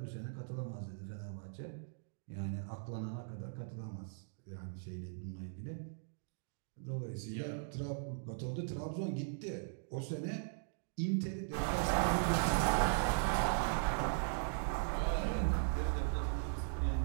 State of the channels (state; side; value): silent; left; digital silence